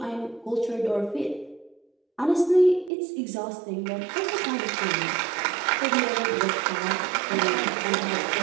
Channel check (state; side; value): drops out; left; at 2.9 s